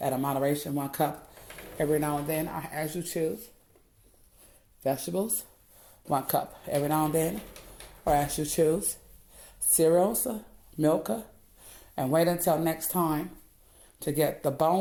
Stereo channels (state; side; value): identical; both; correlation 1.00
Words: a moderation, 1 cup every now and then, as you choose. Vegetables, 1 cup every now and then, or as you choose. Cereals, milk, and wait until next time to get the